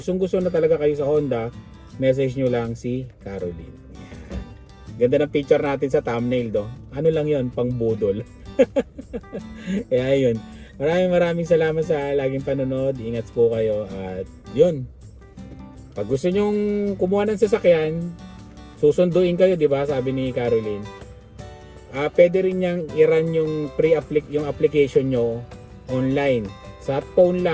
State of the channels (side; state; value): both; identical; correlation 1.00